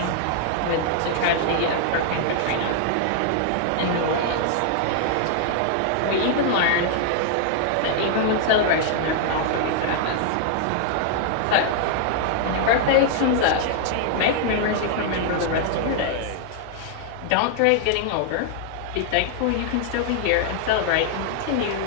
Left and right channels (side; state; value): both; different; correlation -0.01